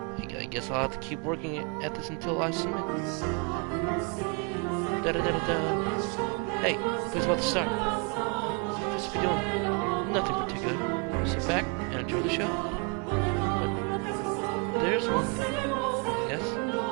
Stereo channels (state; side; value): quieter; left; 34.6 dB